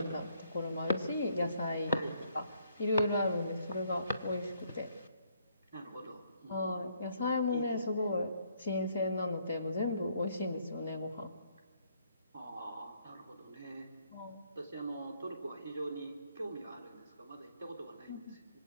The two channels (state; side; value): inverted; both; correlation -0.68